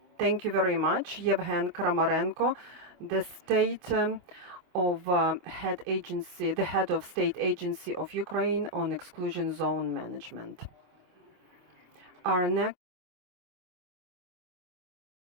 Thank you very much. Yevhen Kramarenko, the the head of state agency of Ukraine on exclusion zone management. Our next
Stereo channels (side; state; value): left; late; 25 ms